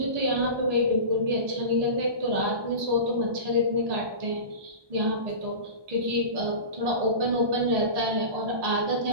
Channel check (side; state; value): left; late; 1.2 ms